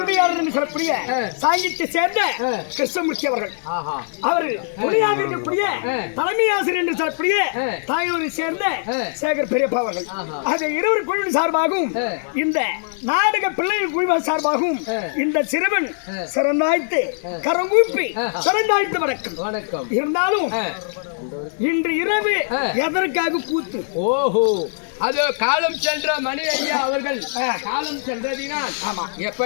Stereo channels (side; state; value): right; silent; digital silence